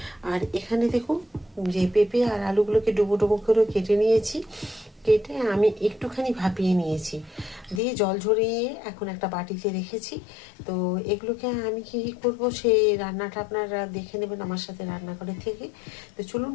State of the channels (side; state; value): right; drops out; at 7.8 s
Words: আর এখানে দেখুন যে পেঁপে আর আলুগুলোকে ডুবো ডুবো করে কেটে নিয়েছি। কেটে আমি একটুখানি ভাপিয়ে নিয়েছি, দিয়ে জল ঝরিয়ে এখন একটা বাটিতে রেখেছি। তো এগুলোকে আমি কী করবো সেই রান্নাটা আপনারা দেখে নেবেন আমার সাথে রান্নাঘরে থেকে। তো চলুন